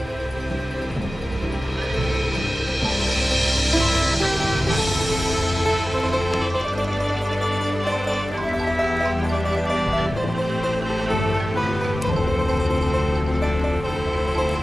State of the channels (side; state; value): both; normal; correlation 0.95